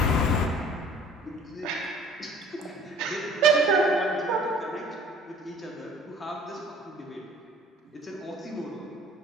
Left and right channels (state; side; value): normal; both; correlation 0.51